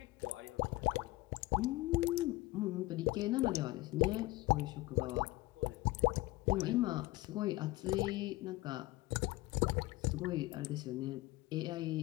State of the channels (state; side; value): quieter; right; 19.7 dB